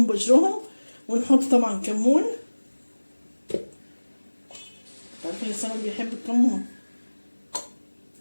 بقشرهم، ونحط طبعا كمون. عارفين السمك بيحب الكمون.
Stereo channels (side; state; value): both; inverted; correlation -1.00